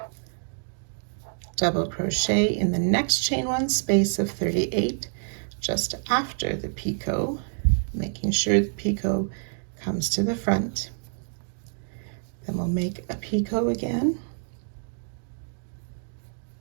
double crochet in the next chain 1 space of 38 just after the picot, making sure the picot comes to the front. Then we'll make a picot again,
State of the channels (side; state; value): left; silent; digital silence